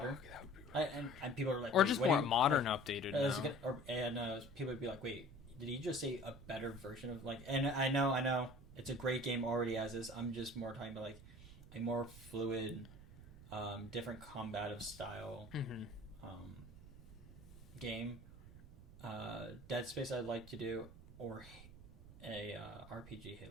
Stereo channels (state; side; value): noise; right; rumble, 17 dB below the sound